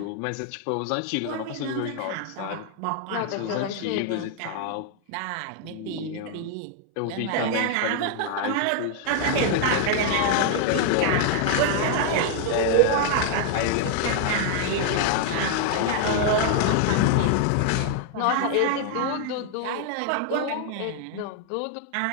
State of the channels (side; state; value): both; different; correlation 0.00